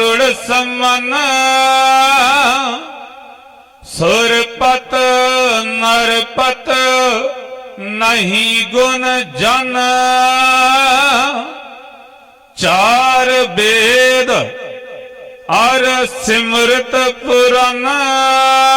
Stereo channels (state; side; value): identical; both; correlation 1.00